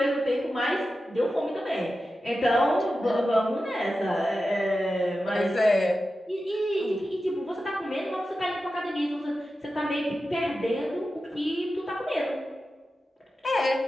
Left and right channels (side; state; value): both; normal; correlation 0.92